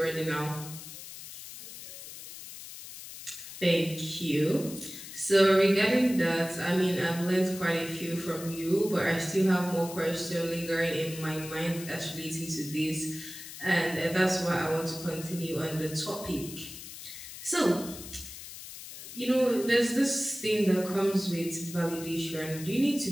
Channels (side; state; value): left; noise; hiss, 12 dB below the sound